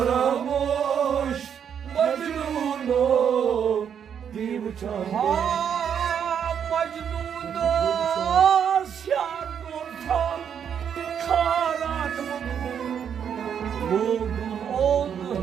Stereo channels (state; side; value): quieter; left; 8.1 dB